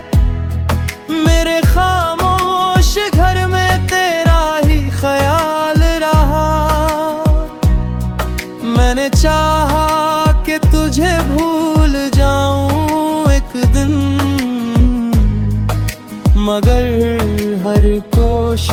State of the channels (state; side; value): identical; both; correlation 1.00